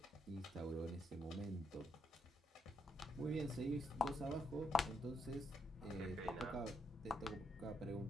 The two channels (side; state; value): both; normal; correlation 0.76